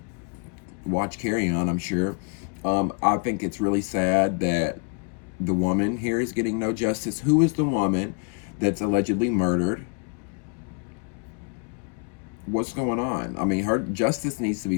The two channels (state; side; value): quieter; right; 37.4 dB